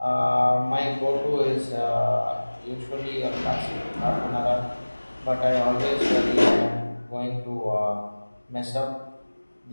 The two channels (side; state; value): both; inverted; correlation -1.00